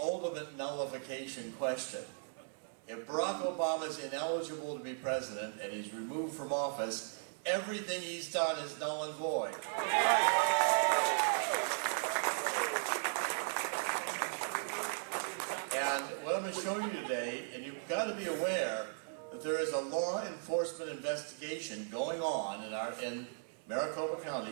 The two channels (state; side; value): silent; left; 53 dB below the other